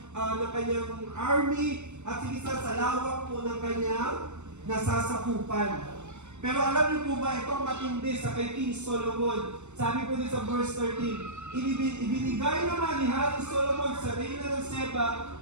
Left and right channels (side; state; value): left; late; 0.83 ms